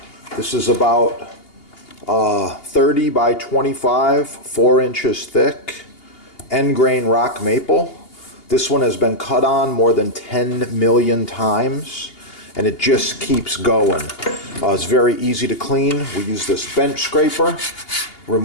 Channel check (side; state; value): right; late; 2.8 ms